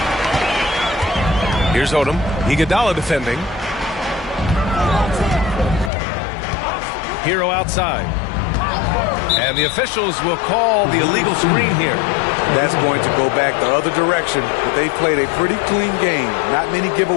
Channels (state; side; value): drops out; right; at 5.9 s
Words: Here's Odom. Iguodala defending. Hero outside. And the officials will call the illegal screen here. That's going to go back the other direction, but they played a pretty clean game. Not many